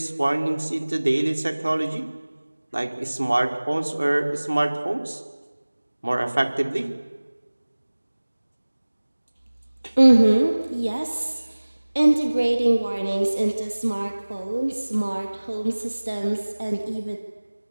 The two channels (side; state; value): both; inverted; correlation -1.00